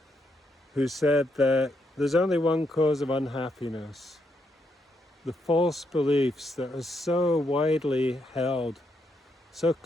who said that there's only one cause of unhappiness: the false beliefs that are so widely held, so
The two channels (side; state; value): both; normal; correlation 0.78